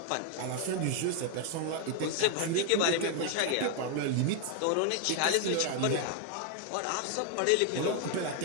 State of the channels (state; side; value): different; both; correlation 0.00